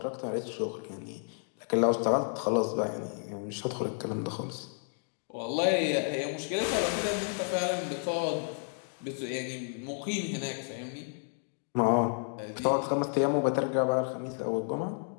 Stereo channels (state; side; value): silent; right; 57 dB below the other